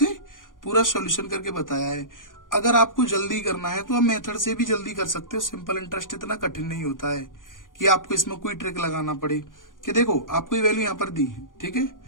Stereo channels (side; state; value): right; late; 0.89 ms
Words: पूरा सॉल्यूशन करके बताया है। अगर आपको जल्दी करना है तो आप मेथड से भी जल्दी कर सकते हो, सिंपल इंटरेस्ट इतना कठिन नहीं होता है, कि आपको इसमें कोई ट्रिक लगाना पड़े कि देखो आपको ये वैल्यू यहाँ पर दी है, ठीक है,